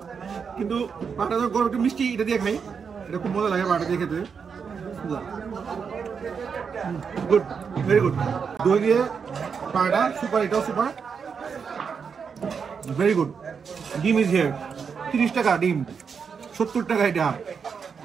কিন্তু পাটা তো গরম একটু মিষ্টি, এটা দিয়ে খাই, এটা খুব মজা লাগে পাটা দিয়ে খেতে। Good, very good. দই দিয়ে পাটা সুপার, এটাও সুপার, ভেরি গুড। ডিম ইজ হিয়ার, 30 টাকা ডিম, 70 টাকা এটা।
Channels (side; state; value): left; quieter; 6.2 dB